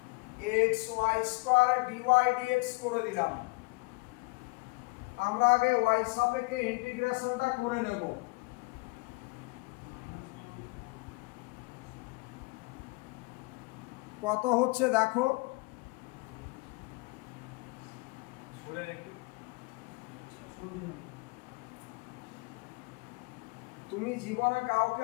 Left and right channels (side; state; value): right; quieter; 28.0 dB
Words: x y square dy dx করে দিলাম আমরা আগে y সাপেক্ষে ইন্টিগ্রেশনটা করে নেব কত হচ্ছে দেখো তুমি জীবনে কাউকে